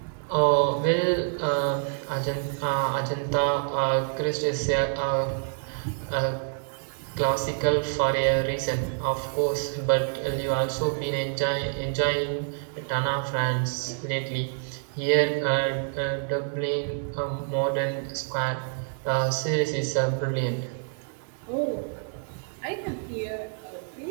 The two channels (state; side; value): silent; left; 60 dB below the other